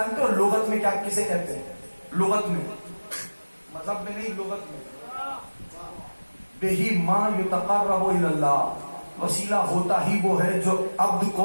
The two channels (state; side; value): inverted; both; correlation -1.00